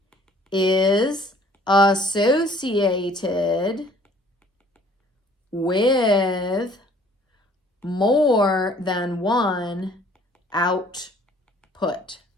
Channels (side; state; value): both; normal; correlation 0.56